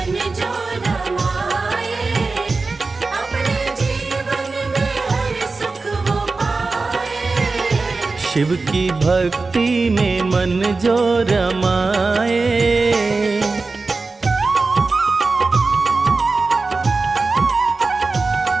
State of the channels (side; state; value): left; quieter; 3.9 dB